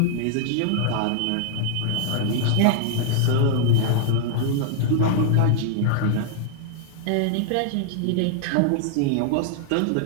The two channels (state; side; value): different; both; correlation -0.01